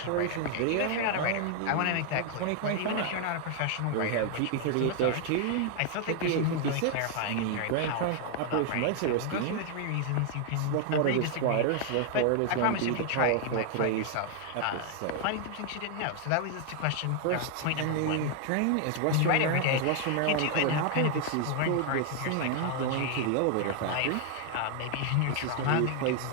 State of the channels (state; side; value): different; both; correlation 0.00